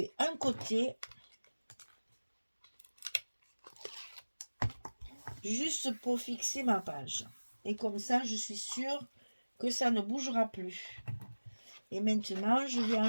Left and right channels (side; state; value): both; inverted; correlation -1.00